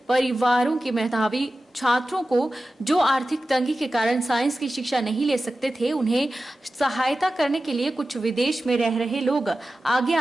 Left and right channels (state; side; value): normal; both; correlation 0.94